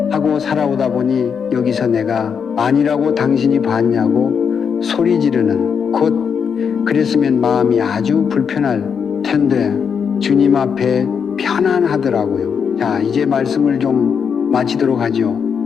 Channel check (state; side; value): quieter; right; 6.7 dB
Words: 하고 살아오다 보니 여기서 내가 아니라고 당신이 봤냐고 소리 지르는, 곧 그랬으면 마음이 아주 불편할 텐데 주님 앞에 편안하더라고요. 자, 이제 말씀을 좀 마치도록 하죠.